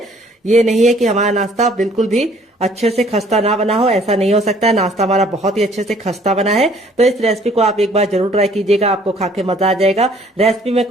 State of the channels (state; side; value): normal; both; correlation 0.58